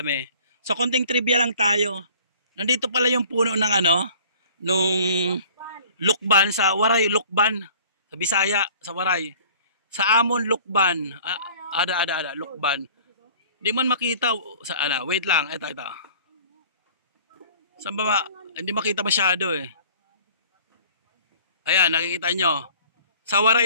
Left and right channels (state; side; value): inverted; both; correlation -0.49